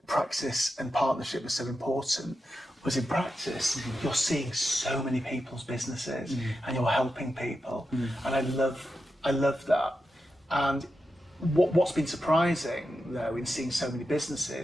practice and partnership was so important was, in practice, you're seeing so many people's businesses and you're helping people, and I love that. And what's been surprising, though, in seeing so many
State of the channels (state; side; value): normal; both; correlation 0.89